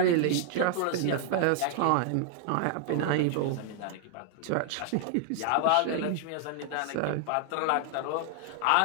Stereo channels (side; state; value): both; different; correlation 0.00